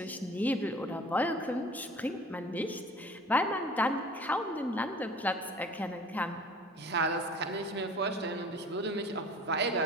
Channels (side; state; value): both; normal; correlation 0.46